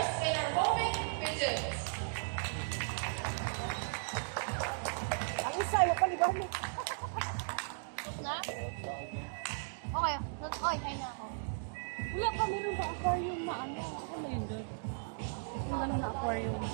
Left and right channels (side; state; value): left; silent; digital silence